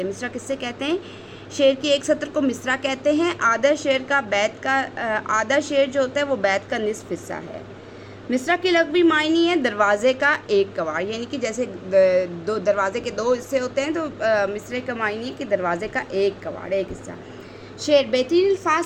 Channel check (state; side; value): identical; both; correlation 1.00